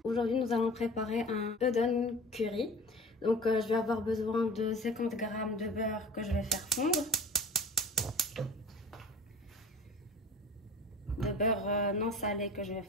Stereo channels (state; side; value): normal; both; correlation 0.38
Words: Aujourd'hui, nous allons préparer un udon curry. Donc, je vais avoir besoin de 50 g de beurre que je vais faire fondre. De beurre non salé que je vais